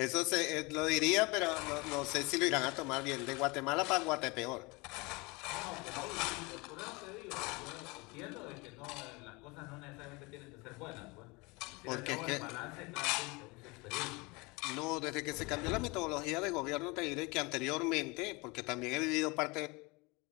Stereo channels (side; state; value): right; quieter; 26.2 dB